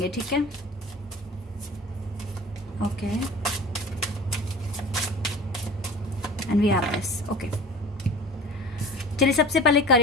ठीक है। Okay, and we have this, okay. चलिए सबसे पहले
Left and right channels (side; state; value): both; normal; correlation 0.41